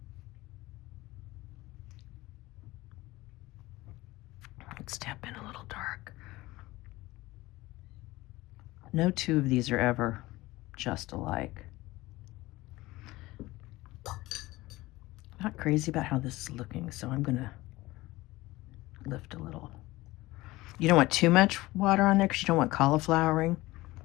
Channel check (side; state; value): right; quieter; 19.3 dB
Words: Let's tap in a little dark. No two of these are ever just alike. Not crazy about how this is looking, so I'm gonna lift a little. You don't want too much water on there because you don't want cauliflowering.